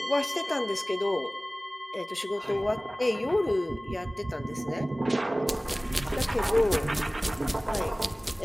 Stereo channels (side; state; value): both; normal; correlation 0.98